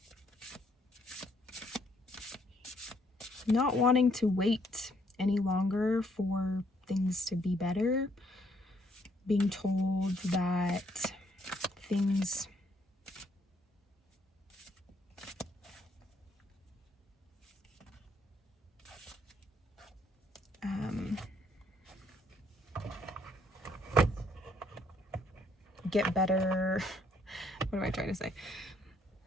not wanting to wait any longer for things to be better, being told that things get better. What am I trying to say?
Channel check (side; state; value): both; normal; correlation 0.69